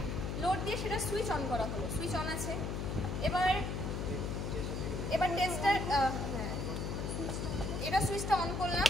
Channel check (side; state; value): left; noise; hum, 2 dB below the sound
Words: লোড দিয়ে সেটা সুইচ অন করা হলো, সুইচ অন আছে। এবার টেস্টার এটা সুইচটা অন করলাম,